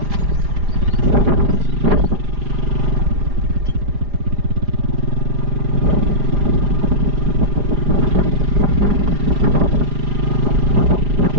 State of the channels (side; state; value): left; late; 4.9 ms